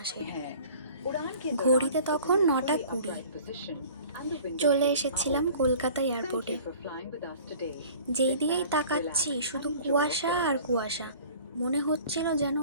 ঘড়িতে তখন 9:20। চলে এসেছিলাম কলকাতা এয়ারপোর্টে। যেই দিকেই তাকাচ্ছি শুধু কুয়াশা আর কুয়াশা। মনে হচ্ছিল যেন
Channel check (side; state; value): both; inverted; correlation -0.47